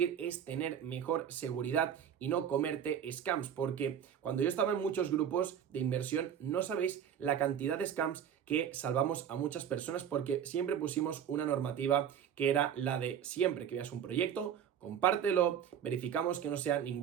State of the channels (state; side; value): quieter; left; 8.8 dB